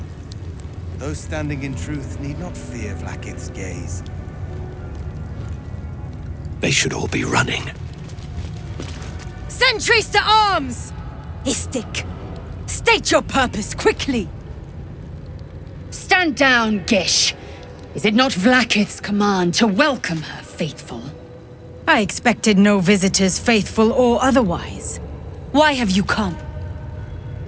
Those standing in truth need not fear Vlaakith's gaze. They should all be running. Sentries to arms! Istik, state your purpose quickly! Stand down, Gish. Is it not Vlaakith's command to welcome her faithful? I expected no visitors, faithful or otherwise. Why have you come?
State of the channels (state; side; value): identical; both; correlation 1.00